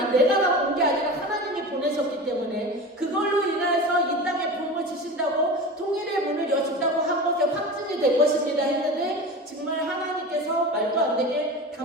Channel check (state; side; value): normal; both; correlation 0.30